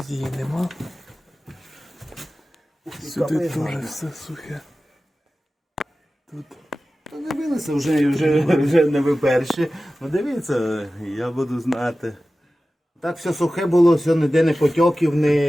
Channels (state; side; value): normal; both; correlation 0.95